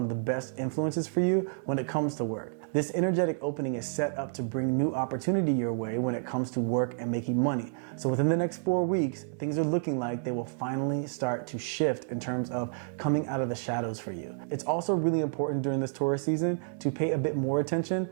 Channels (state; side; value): silent; left; digital silence